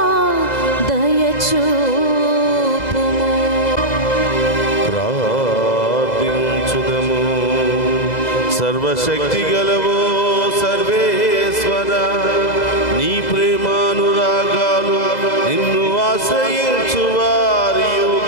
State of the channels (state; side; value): late; right; 2.0 ms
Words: దయచూపుము. ప్రార్థించుదము. సర్వశక్తి గలవో సర్వేశ్వర, నీ ప్రేమానురాగాలు నిన్ను ఆశ్రయించు వారి